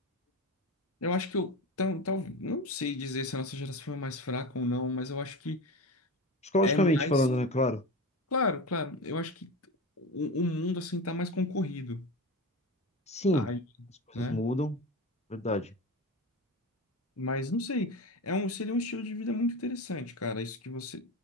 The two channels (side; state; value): both; normal; correlation 0.26